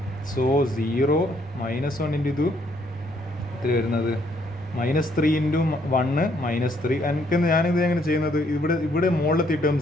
സോ 0 -1 ഇൻറ്റു ഇത് എത്ര വരുന്നത്? -3 ഇൻറ്റു 1 -3. എനിക്ക് ഞാനിത് എങ്ങനെ ചെയ്യുന്നത്? ഇവിടെ മുകളിലത്തെ ടേം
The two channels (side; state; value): both; normal; correlation 0.69